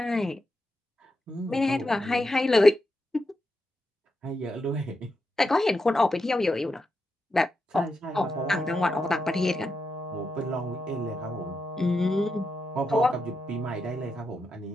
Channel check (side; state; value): both; normal; correlation 0.86